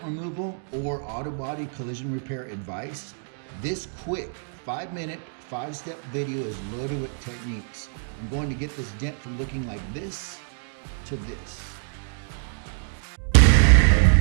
or auto body collision repair advice? This quick 5-minute, 5-step video is loaded with techniques. I'm going to get this dent from looking like this to this.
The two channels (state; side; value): silent; left; digital silence